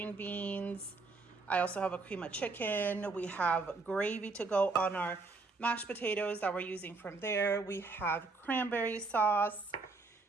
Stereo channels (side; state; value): left; quieter; 3.8 dB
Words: beans. I also have a cream of chicken. We have gravy to go on our mashed potatoes that we're using from there. We have cranberry sauce.